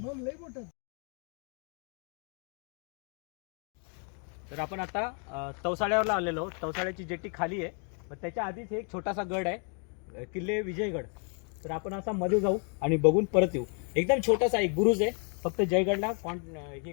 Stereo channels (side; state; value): right; quieter; 39.9 dB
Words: लय मोठा. तर आपण आता तवसाळ्यावरला आलेलो आहोत. तवसाळ्याची जेट्टी खाली आहे, पण त्याच्या आधीच एक छोटासा गड आहे, किल्ले विजयगड. तर आपण असा मध्ये जाऊ आणि बघून परत येऊ. एकदम छोटासा एक बुरुज आहे, फक्त जयगडला हे